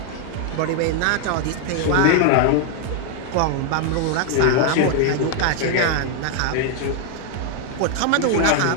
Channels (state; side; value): different; both; correlation 0.00